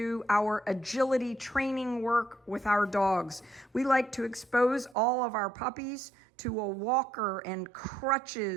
our agility training work with our dogs. We like to expose all of our puppies to a walker and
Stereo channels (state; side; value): drops out; left; at 5.0 s